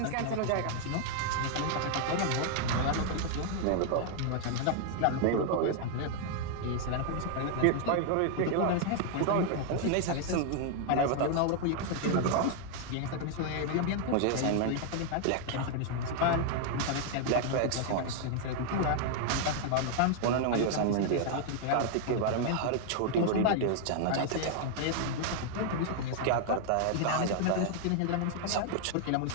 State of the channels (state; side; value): different; both; correlation 0.00